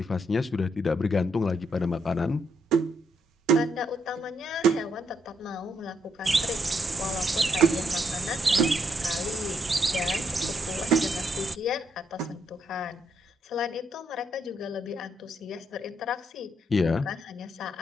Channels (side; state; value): both; normal; correlation 0.76